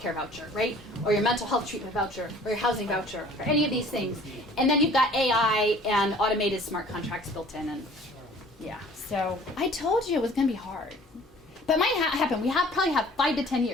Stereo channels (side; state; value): both; normal; correlation 0.51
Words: voucher, right? Or your mental health treatment voucher, or your housing voucher, or any of these things. And then you've got AI and automated smart contracts built in, and yeah. So I told you it was going to be hard. But it might happen. We probably have 5 to 10